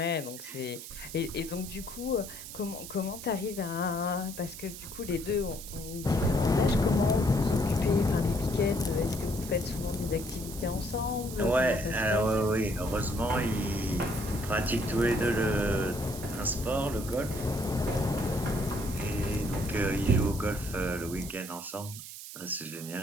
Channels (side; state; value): right; noise; hiss, 12 dB below the sound